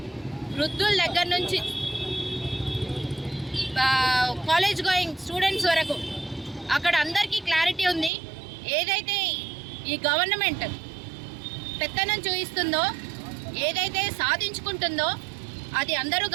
వృద్ధుల దగ్గర నుంచి కాలేజ్ గోయింగ్ స్టూడెంట్స్ వరకు అక్కడ అందరికీ క్లారిటీ ఉంది. ఏదైతే ఈ గవర్నమెంట్ పెత్తనం చూపిస్తుందో, ఏదైతే సాధించుకుంటుందో అది అందరూ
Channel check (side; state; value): left; drops out; at 8.1 s